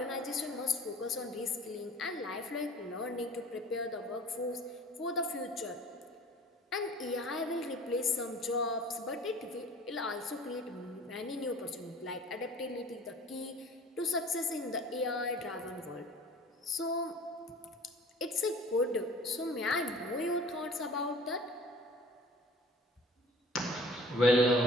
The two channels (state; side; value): normal; both; correlation 0.48